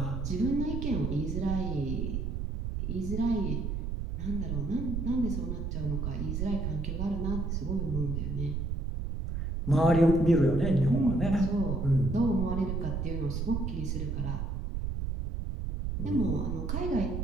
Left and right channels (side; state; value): right; noise; rumble, 2 dB below the sound